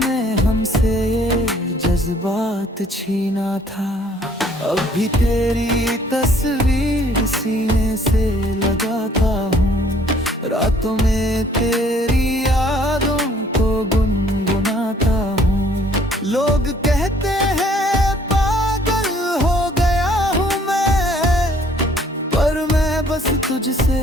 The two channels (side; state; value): both; normal; correlation 0.60